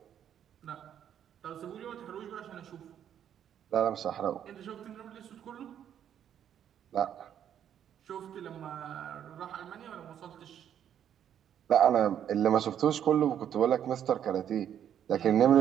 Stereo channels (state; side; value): quieter; left; 9.6 dB